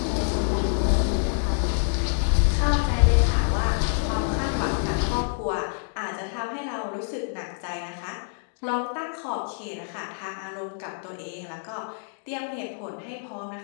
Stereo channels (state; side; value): silent; right; digital silence